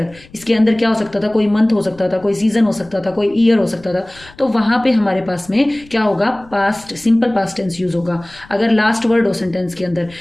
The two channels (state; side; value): noise; left; rumble, 24 dB below the sound